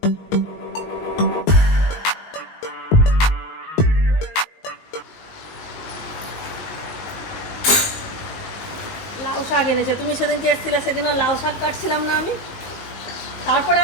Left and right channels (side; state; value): right; late; 19 ms